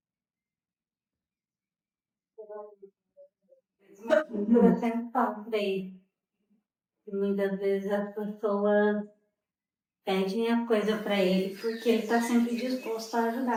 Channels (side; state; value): both; identical; correlation 1.00